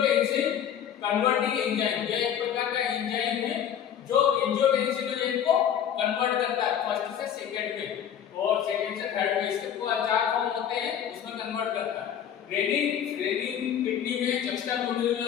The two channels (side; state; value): right; quieter; 9.2 dB